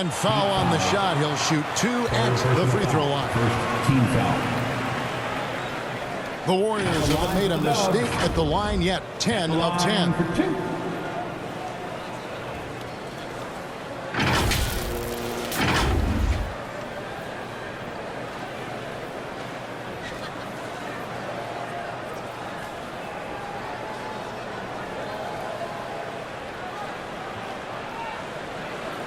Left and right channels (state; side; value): identical; both; correlation 1.00